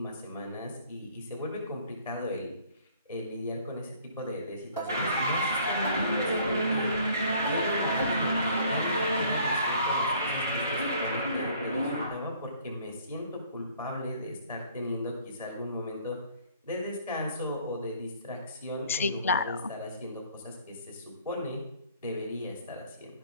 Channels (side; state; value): both; inverted; correlation -0.58